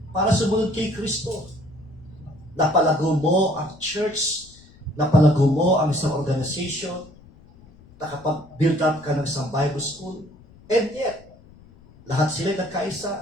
para sumunod kay Kristo. Napalago mo ang church, napalago mo ang isang organization, nakapag-build up ka ng isang Bible school, and yet, lahat sila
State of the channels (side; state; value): left; noise; rumble, 24 dB below the sound